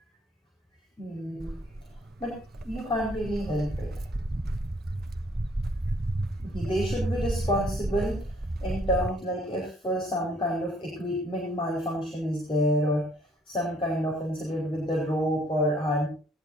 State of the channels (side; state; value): both; normal; correlation 0.63